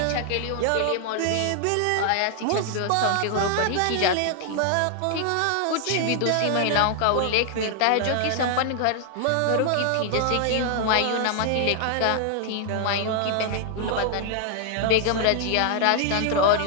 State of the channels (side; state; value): both; different; correlation 0.00